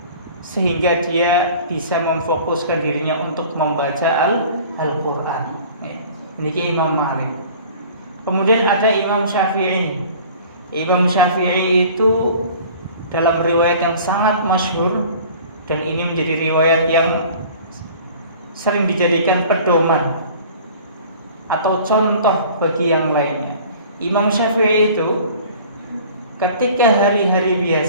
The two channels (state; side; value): inverted; both; correlation -0.46